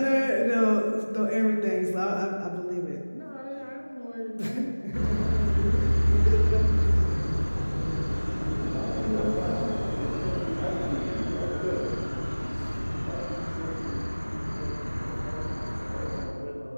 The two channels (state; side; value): inverted; both; correlation -1.00